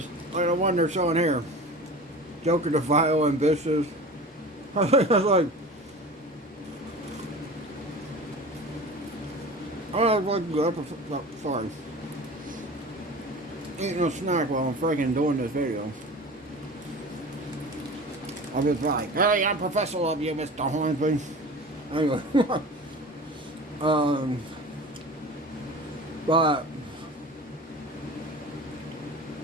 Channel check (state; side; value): normal; both; correlation 0.36